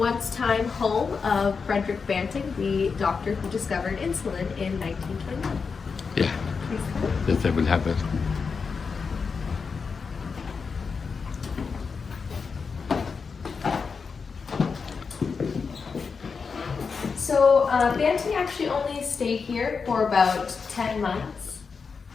home of Frederick Banting, the doctor who discovered insulin in 1921. Yeah, yes, I will have it. So Banting actually only stayed here for about 10 months.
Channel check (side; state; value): right; quieter; 5.3 dB